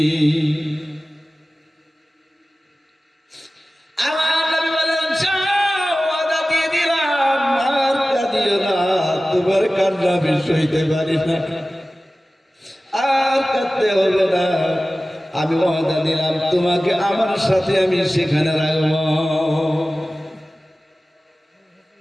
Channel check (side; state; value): both; normal; correlation 0.96